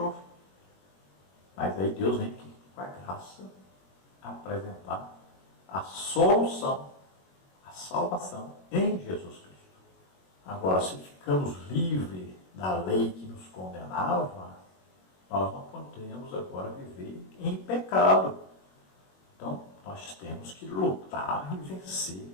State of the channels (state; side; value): late; right; 21 ms